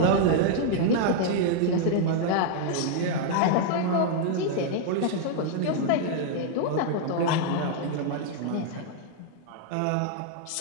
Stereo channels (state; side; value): different; both; correlation -0.01